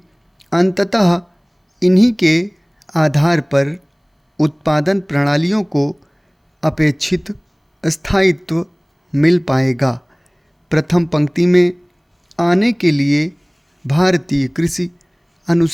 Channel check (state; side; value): identical; both; correlation 1.00